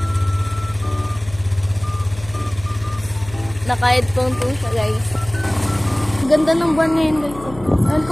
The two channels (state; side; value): noise; left; hum, 16 dB below the sound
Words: Naka-headphone po siya, guys. Ganda ng buwan ngayon, guys. Alam